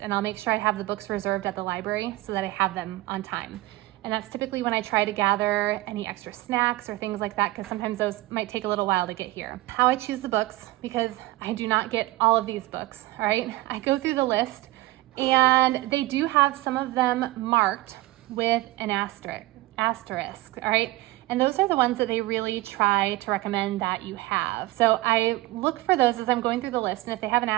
I'll make sure I have the books reserved at the library so that I have them on time. And that's typically when I try to gather any extra snacks or things like that, because sometimes those might take a little while to get here. How I choose the books, because I do not get all of these books, all right? I go through the list and they do have some of them marked with an asterisk, all right? And those are the ones that they really try to recommend that you have. So I look for those as I'm going through the list, and if they have an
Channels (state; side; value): quieter; left; 19.0 dB